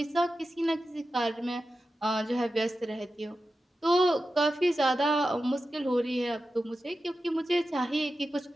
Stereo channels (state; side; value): normal; both; correlation 0.92